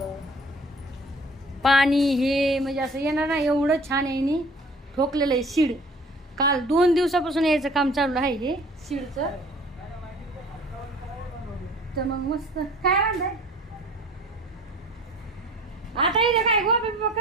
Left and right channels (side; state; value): both; normal; correlation 0.50